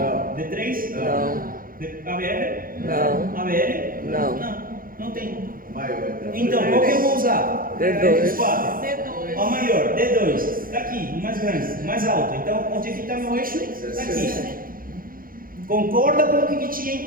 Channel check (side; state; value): left; late; 0.41 ms